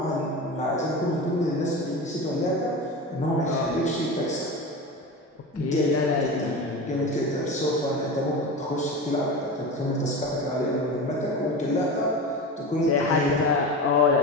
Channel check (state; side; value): normal; both; correlation 0.27